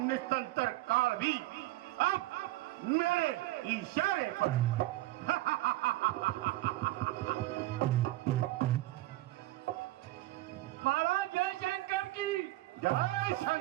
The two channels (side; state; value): left; quieter; 17.8 dB